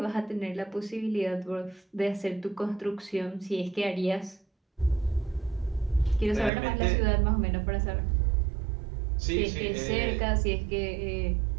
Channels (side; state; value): left; drops out; at 6.5 s